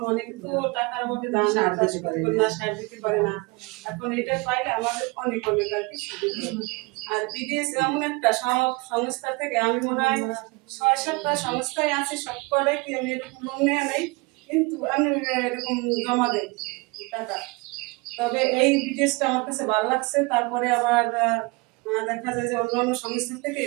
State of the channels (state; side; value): quieter; left; 26.3 dB